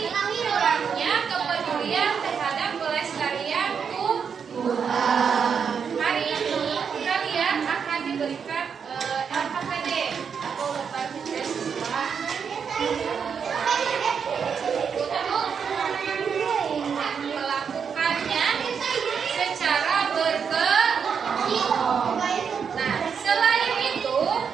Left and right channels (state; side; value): quieter; left; 6.7 dB